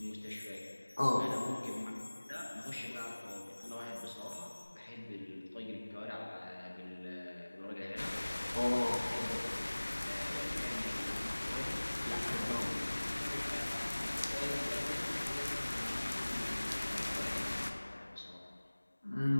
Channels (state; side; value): inverted; both; correlation -1.00